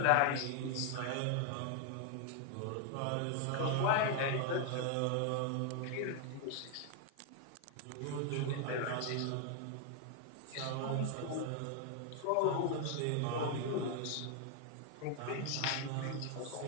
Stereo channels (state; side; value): different; both; correlation 0.00